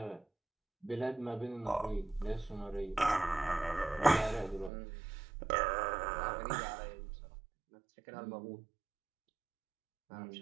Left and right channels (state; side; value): drops out; left; at 4.7 s